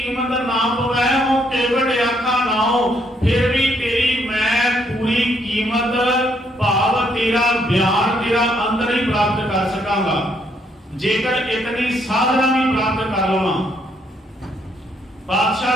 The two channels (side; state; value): both; normal; correlation 0.72